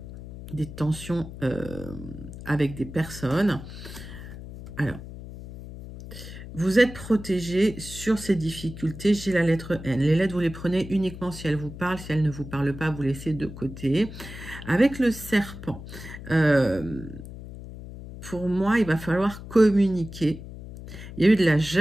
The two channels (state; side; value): noise; left; hum, 13 dB below the sound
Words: Des tensions avec des personnes. Alors, vous êtes protégé sur ces difficultés. J'ai la lettre N. Les lettres, vous les prenez uniquement si elles vous parlent. Si elles ne vous parlent pas, vous laissez de côté. Avec le serpent, pour moi, il va falloir communiquer. Il y a eu de la